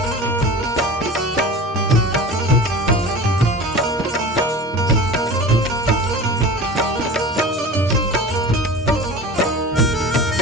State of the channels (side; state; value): both; normal; correlation 0.36